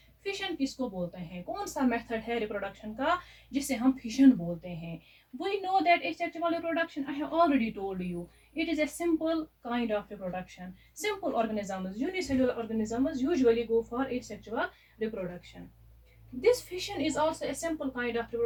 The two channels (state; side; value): identical; both; correlation 1.00